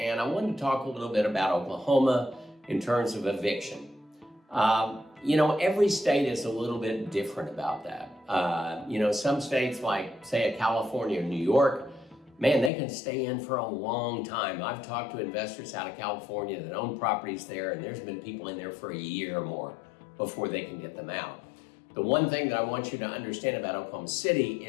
I wanted to talk a little bit about Oklahoma in terms of eviction. Every state is a little bit different about that. Some states like, say, California or New York, man, they can stay in for a long time. I've talked to investors out of California that own properties there, and there's been people in there for a year or more before they can get them out. The one thing that I want you to understand about Oklahoma City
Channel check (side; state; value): right; drops out; at 12.7 s